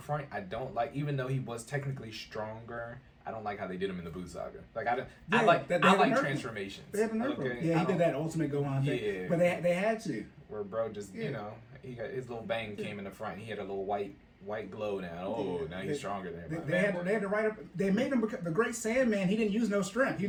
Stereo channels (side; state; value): both; identical; correlation 1.00